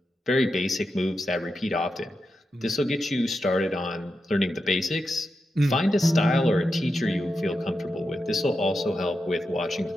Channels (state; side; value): normal; both; correlation 0.88